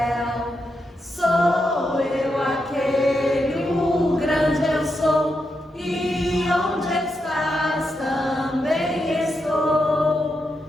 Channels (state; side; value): normal; both; correlation 0.84